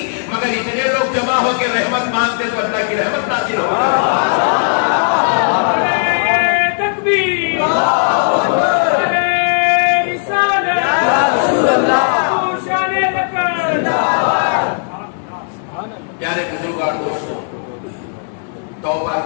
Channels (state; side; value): silent; right; digital silence